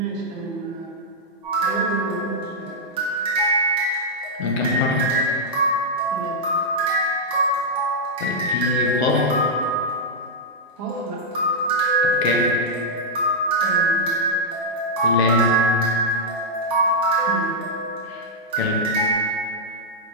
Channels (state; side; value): normal; both; correlation -0.05